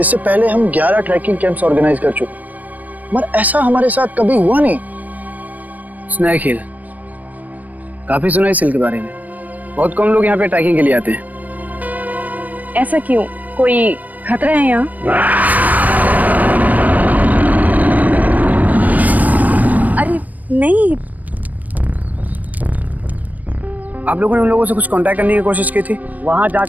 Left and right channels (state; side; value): late; left; 0.078 ms